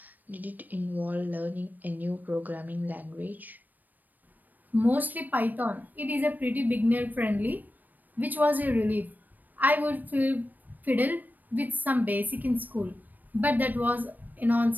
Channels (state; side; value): late; left; 0.086 ms